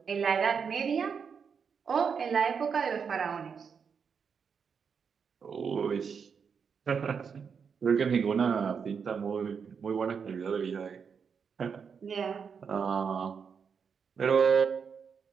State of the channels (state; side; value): quieter; left; 6.3 dB